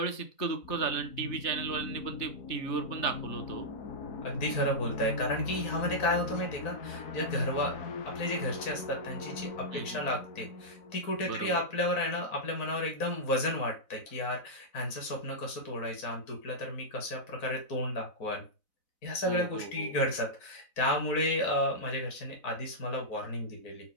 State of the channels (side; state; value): right; late; 4.0 ms